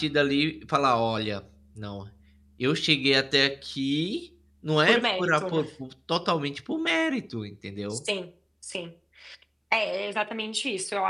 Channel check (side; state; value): both; identical; correlation 1.00